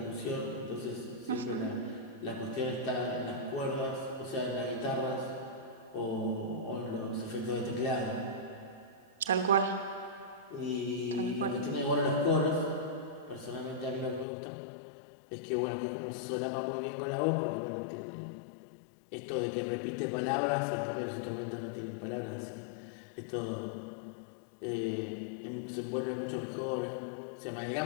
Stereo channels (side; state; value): right; drops out; at 14.2 s